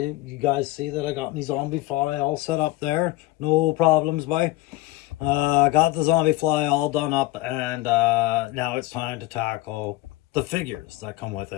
You guys see that I got my zombie fly all set up there. No problems, bye. Got the zombie fly all done up, and now it's time to tackle the figures that come with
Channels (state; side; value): quieter; right; 18.3 dB